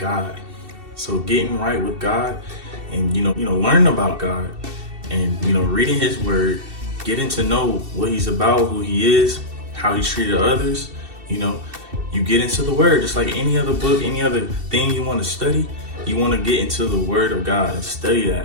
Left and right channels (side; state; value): left; late; 2.7 ms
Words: So getting right with God and, learning about God and, reading his word, getting to know what he's about, who he is, how he treated others, you get into the word, just like any other book, any other thing you want to study, you want to get into the word of God and study that